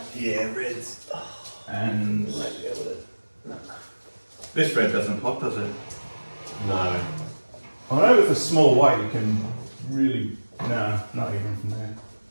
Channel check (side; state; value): both; inverted; correlation -1.00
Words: Yeah, reds. And this red doesn't pop, does it? No. I know with a small white you can really, no, not even from there.